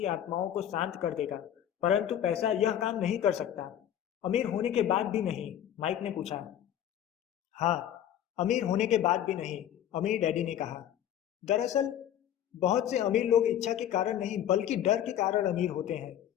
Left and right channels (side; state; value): right; quieter; 10.7 dB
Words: आत्माओं को शांत कर देगा, परंतु पैसा यह काम नहीं कर सकता। अमीर होने के बाद भी नहीं? माइक ने पूछा। हाँ, अमीर होने के बाद भी नहीं, अमीर डैडी ने कहा। दरअसल बहुत से अमीर लोग इच्छा के कारण नहीं बल्कि डर के कारण अमीर होते हैं।